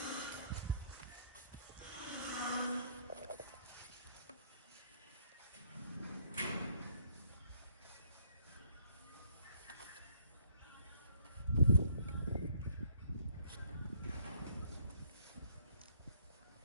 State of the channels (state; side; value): inverted; both; correlation -0.63